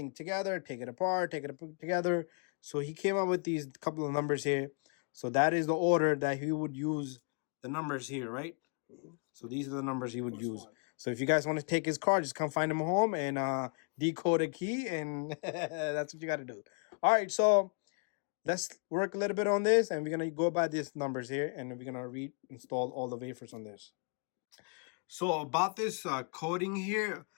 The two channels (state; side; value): quieter; right; 39.4 dB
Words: together, take it apart, take it together. So he came up with these couple of numbers here. So that is the order that he would use the numbers here, right? So these are the numbers he would use. So if you guys want to take his card, just come find him home and decode a key, and that's what you got to do. All right, so let's work a little bit on this, and we're going to go by these numbers here, and we're going to reinstall all the wafers on this. So about this coding here,